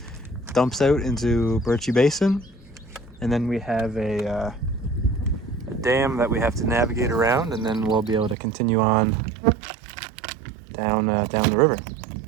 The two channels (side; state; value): left; drops out; at 8.3 s